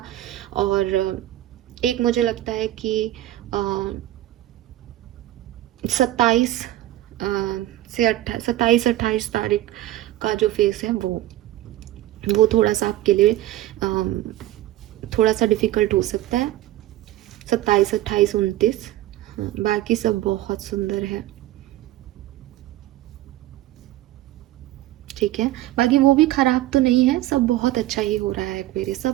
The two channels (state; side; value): quieter; left; 15.0 dB